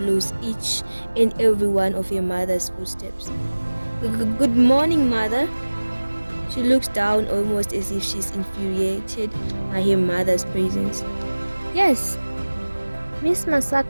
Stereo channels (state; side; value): inverted; both; correlation -1.00